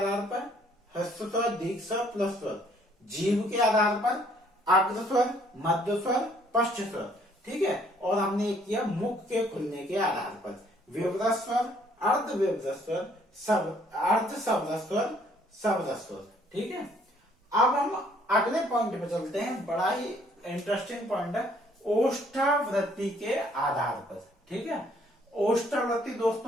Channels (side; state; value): both; normal; correlation 0.63